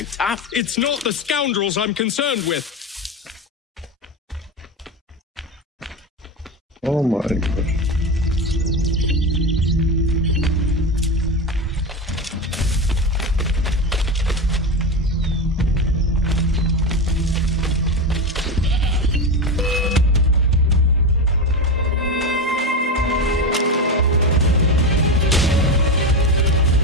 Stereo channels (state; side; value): normal; both; correlation 0.17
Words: tough. It's not the scoundrels I'm concerned with. Oh my gosh.